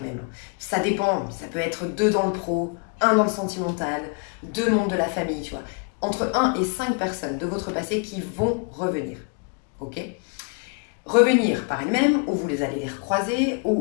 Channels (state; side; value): quieter; right; 36.7 dB